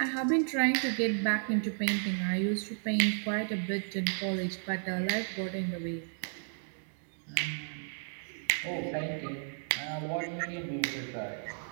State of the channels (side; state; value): left; silent; digital silence